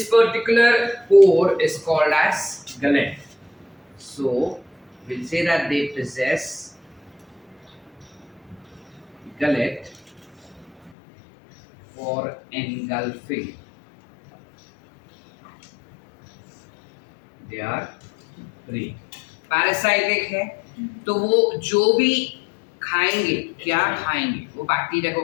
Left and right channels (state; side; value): drops out; right; at 10.9 s